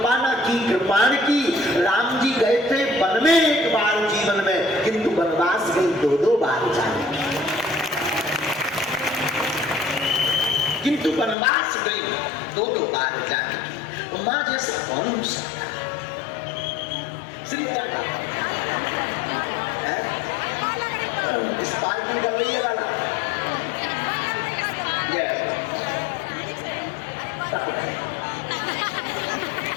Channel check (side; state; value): right; drops out; at 11.4 s